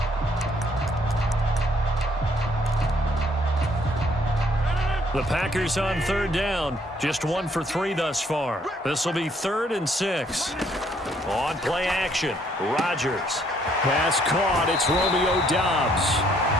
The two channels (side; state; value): both; normal; correlation 0.67